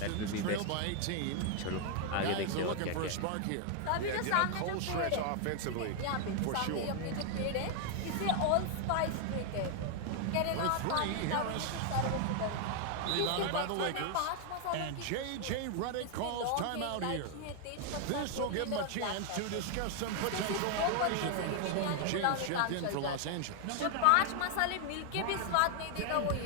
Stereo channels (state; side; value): different; both; correlation 0.00